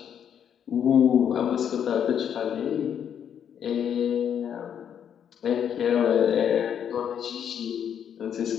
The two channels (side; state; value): right; quieter; 8.6 dB